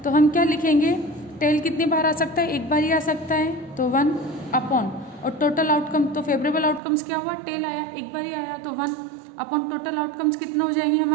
तो हम क्या लिखेंगे? टेल कितनी बार आ सकता है? एक बार ही आ सकता है, तो 1 अपॉन और टोटल आउटकम, तो फेवरेबल आउटकम्स क्या हुआ, टेल आया, एक बार ही आया, तो 1 अपॉन टोटल आउटकम्स कितने हो जाएंगे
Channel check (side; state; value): left; drops out; at 6.8 s